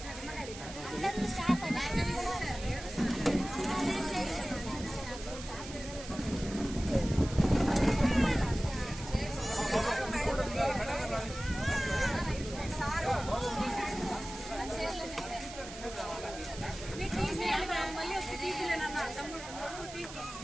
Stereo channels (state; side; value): noise; right; hiss, 12 dB below the sound